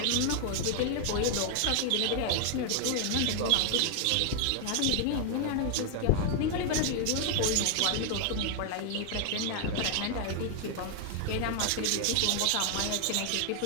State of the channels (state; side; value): different; both; correlation 0.00